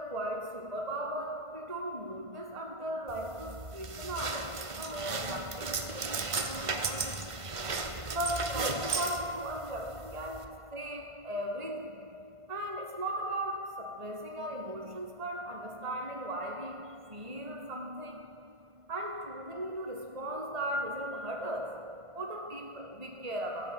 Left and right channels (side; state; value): left; late; 1.5 ms